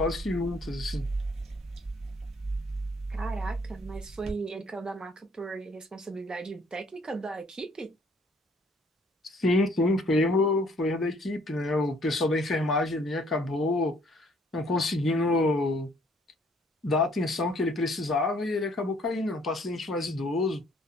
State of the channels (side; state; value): both; normal; correlation 0.62